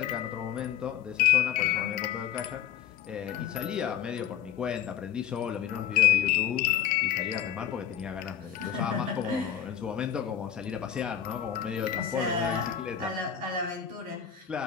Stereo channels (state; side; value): quieter; right; 9.6 dB